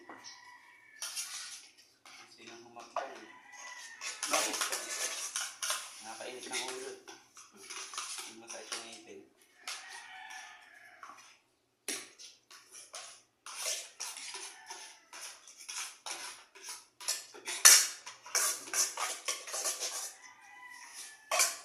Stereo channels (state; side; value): identical; both; correlation 1.00